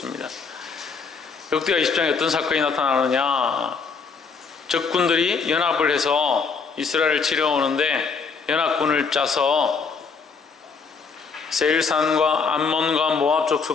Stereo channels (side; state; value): right; quieter; 5.2 dB